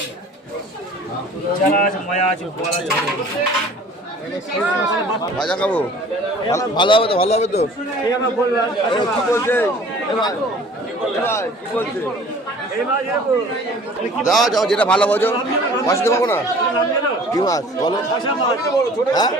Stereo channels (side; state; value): both; normal; correlation 0.48